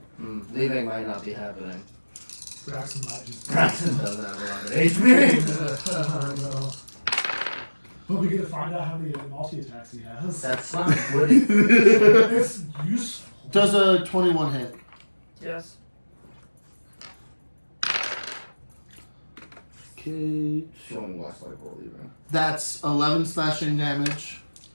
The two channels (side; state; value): both; inverted; correlation -1.00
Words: Leaving might not be happening. Braxton might just... Braxton doesn't have a lot of HP. I know. But we get to find out how many multi-attacks he has. That's not good. It's useful. Does a 21 hit? Yes. Okay, Showing less like we're leaving. that's 11 slashing damage